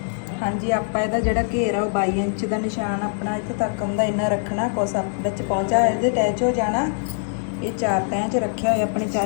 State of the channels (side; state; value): right; silent; digital silence